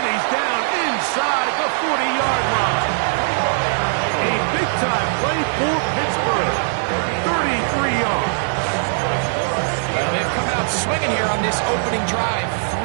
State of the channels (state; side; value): silent; left; digital silence